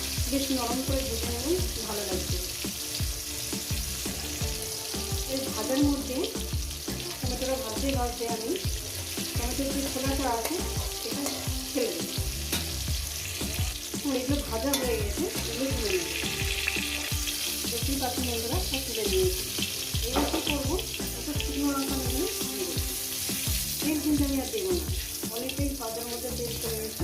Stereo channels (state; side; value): identical; both; correlation 1.00